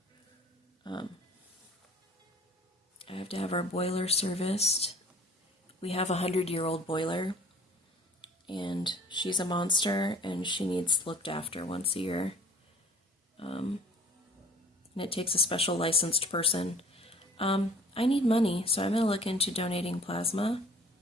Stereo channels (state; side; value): normal; both; correlation 0.49